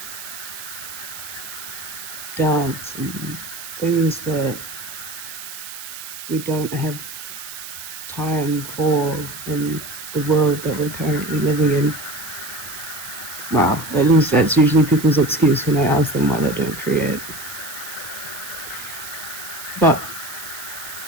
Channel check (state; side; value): noise; right; hiss, 11 dB below the sound